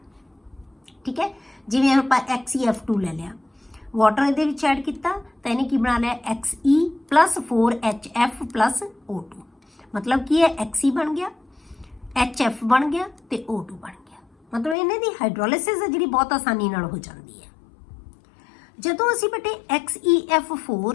ਠੀਕ ਹੈ। ਜਿਵੇਂ ਆਪਾਂ XeF2 ਲੈ ਲਿਆ, ਵਾਟਰ ਇਹਦੇ ਵਿੱਚ ਐਡ ਕੀਤਾ ਤਾਂ ਇਹਨੇ ਕੀ ਬਣਾ ਲਿਆ, Xe plus 4HF plus O2, ਮਤਲਬ ਕੀ ਹੈ, Xe ਬਣ ਗਿਆ, HF ਬਣ ਗਿਆ ਤੇ O2 ਬਣ ਗਿਆ। ਮਤਲਬ ਇਹਨਾਂ ਦੀ ਹਾਈਡਰੋਲਿਸਿਸ ਹੈ ਜਿਹੜੀ ਬਹੁਤ ਆਸਾਨੀ ਨਾਲ ਹੋ ਜਾਂਦੀ ਹੈ। ਜਦੋਂ ਅਸੀਂ ਬੇਟੇ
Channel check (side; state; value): right; drops out; at 14.8 s